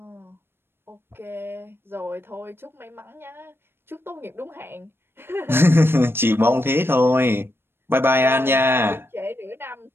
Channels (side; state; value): left; late; 0.11 ms